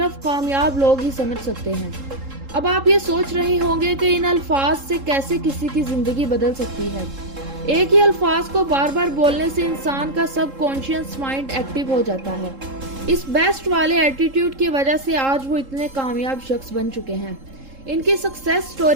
کامیاب لوگ ہی سمجھ سکتے ہیں۔ اب آپ یہ سوچ رہے ہوں گے کہ ان الفاظ سے کیسے کسی کی زندگی بدل سکتی ہے۔ ایک ہی الفاظ کو بار بار بولنے سے انسان کا سب کانشیس مائنڈ ایکٹیو ہو جاتا ہے۔ اس بیسٹ والے ایٹیٹیوڈ کی وجہ سے آج وہ اتنے کامیاب شخص بن چکے ہیں۔ ان کی سکسیس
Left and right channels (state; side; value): late; left; 3.7 ms